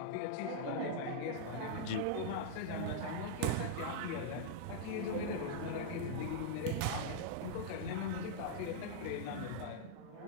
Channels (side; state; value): both; different; correlation -0.02